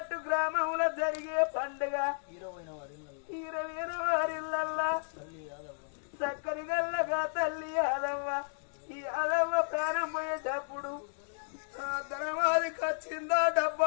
గ్రామంలో జరిగే పండుగ 20 వారిల్లల్లా చక్కని గల్లగా తల్లి యాదవ్వ ఈ యాదవ్వ ప్రాణం పోయేటప్పుడు ధనమాదికి వచ్చిందా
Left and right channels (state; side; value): silent; right; digital silence